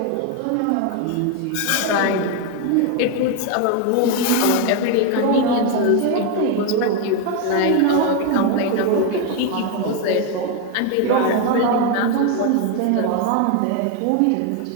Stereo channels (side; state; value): both; different; correlation 0.01